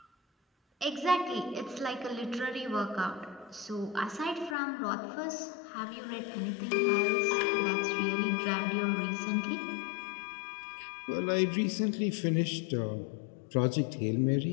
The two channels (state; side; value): drops out; right; at 4.5 s